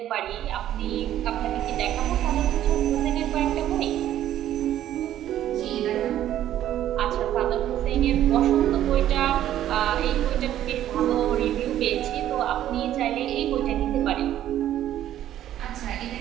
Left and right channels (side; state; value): left; quieter; 12.1 dB